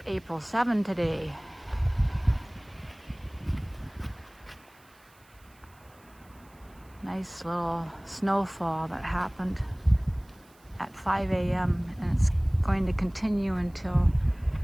April 7 today. Nice little snowfall that happened at 5 a.m. and it's going to continue until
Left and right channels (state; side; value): noise; right; hiss, 30 dB below the sound